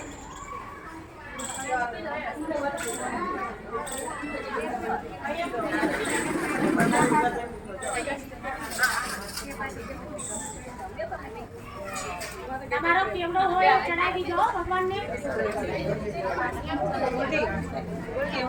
તમારો કેવડો હોય ચડાવી દીધો ભગવાનને.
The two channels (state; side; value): identical; both; correlation 1.00